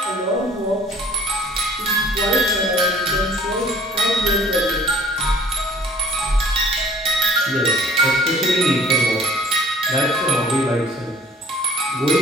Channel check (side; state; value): both; normal; correlation 0.52